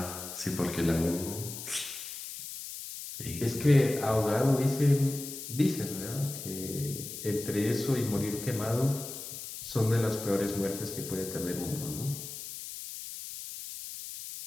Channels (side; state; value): left; noise; hiss, 9 dB below the sound